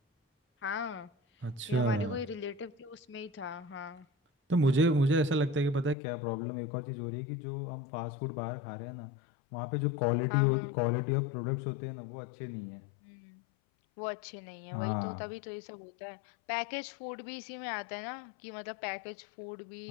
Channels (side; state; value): right; drops out; at 6.0 s